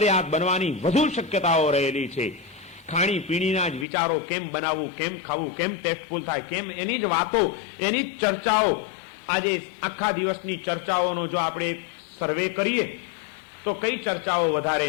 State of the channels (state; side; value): drops out; right; at 3.9 s